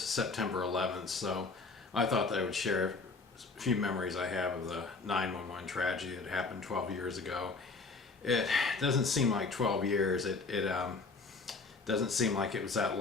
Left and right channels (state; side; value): quieter; right; 4.1 dB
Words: 11th, so I thought that I would share a few memories I have of the 9/11 tragedy that happened 12 years ago. It doesn't seem like 12 years. It doesn't seem like it was that